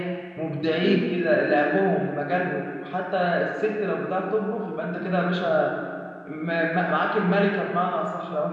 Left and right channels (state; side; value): identical; both; correlation 1.00